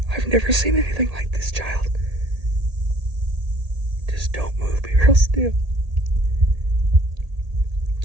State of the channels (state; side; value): late; left; 1.8 ms